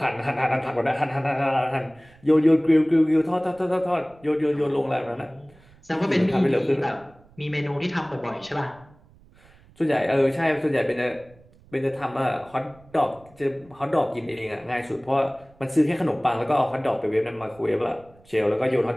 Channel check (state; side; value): noise; right; rumble, 27 dB below the sound